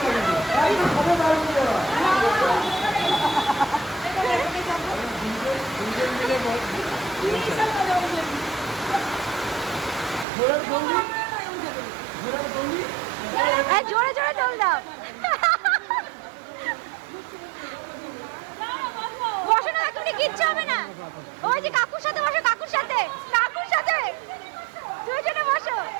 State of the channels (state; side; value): drops out; left; at 10.2 s